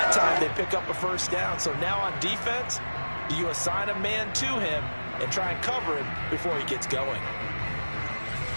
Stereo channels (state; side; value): inverted; both; correlation -1.00